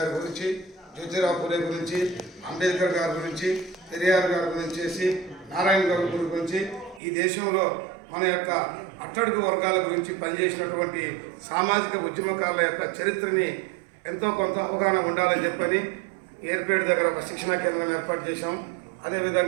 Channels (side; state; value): left; drops out; at 7.0 s